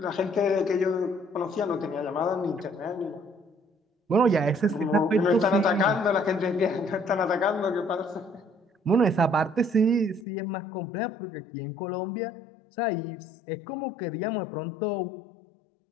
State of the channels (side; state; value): right; drops out; at 10.2 s